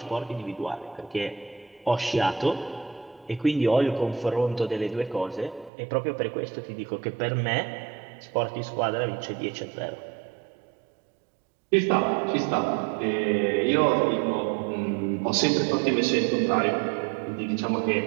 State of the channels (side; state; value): left; drops out; at 5.7 s